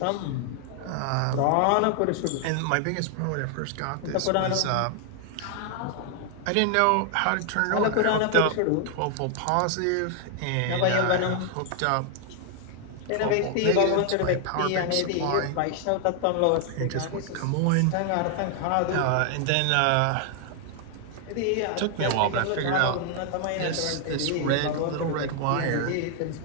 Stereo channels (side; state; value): both; different; correlation 0.00